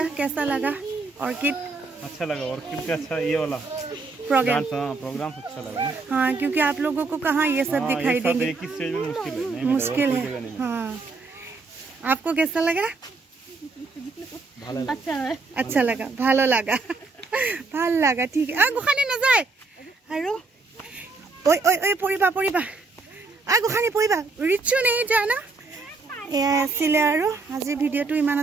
कैसा लगा ऑर्किड अच्छा लगा ऑर्किड का अच्छा ये वाला प्रोग्राम अच्छा लगा हाँ क्योंकि आप लोगों को कहाँ ये सब दिखाई देंगे एक ही स्टेज में मुश्किल है हाँ आपको कैसा लगा अच्छा लगा ভালো লাগা ভাল লাগা ঠিক গোখানি নাযায় আৰু ঐ ঐ ঐ পৰিবা পৰিবা গোখানি পৰিবা ৰিচু নেই জানা এয়া আছিলে আৰু আজি ভিডিঅ'টো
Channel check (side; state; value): left; quieter; 3.8 dB